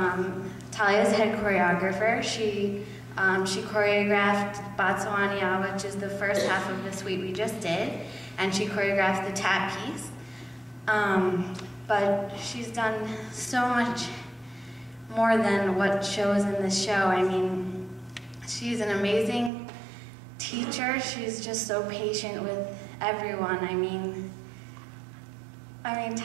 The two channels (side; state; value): left; drops out; at 19.5 s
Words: Talia's head choreographer. She choreographed Botswania, which is the first half of the suite we just did, and she choreographed the tap piece. But she's done so much more than what shows in this show. I mean, she's an amazing teacher. She's just so patient with everyone. I mean,